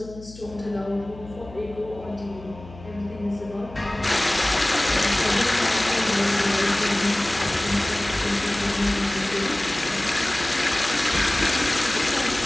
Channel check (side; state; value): left; noise; hum, 17 dB below the sound